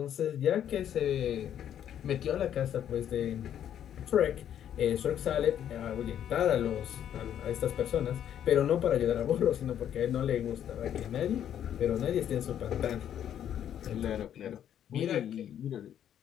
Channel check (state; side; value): quieter; right; 10.0 dB